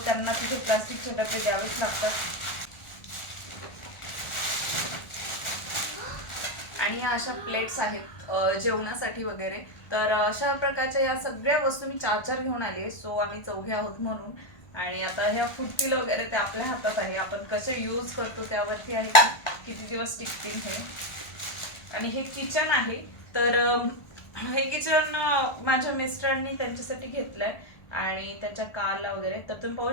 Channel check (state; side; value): late; right; 1.4 ms